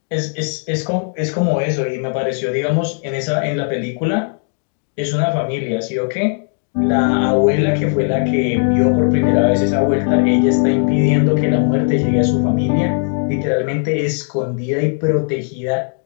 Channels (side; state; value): right; silent; 57 dB below the other